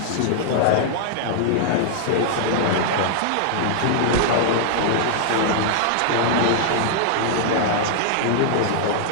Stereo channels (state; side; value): different; both; correlation -0.01